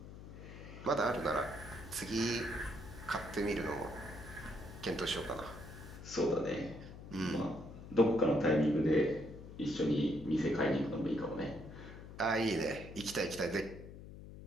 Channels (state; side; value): noise; left; hum, 13 dB below the sound